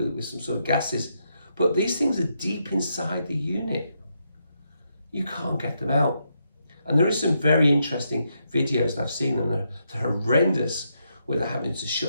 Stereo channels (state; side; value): inverted; both; correlation -0.80